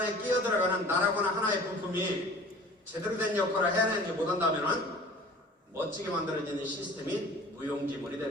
끼어들어가는 나라거나 하나의 부품이 제대로 된 역할을 해내지 못한다면 멋지게 만들어지는 시스템이 무용지물이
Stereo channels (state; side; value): normal; both; correlation 0.44